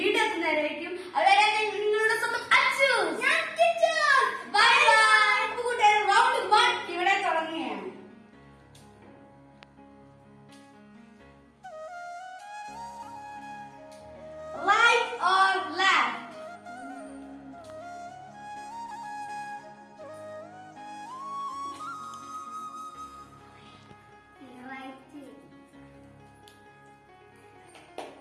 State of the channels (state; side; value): identical; both; correlation 1.00